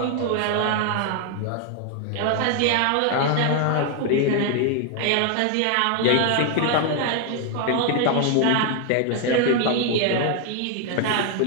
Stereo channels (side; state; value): both; different; correlation 0.00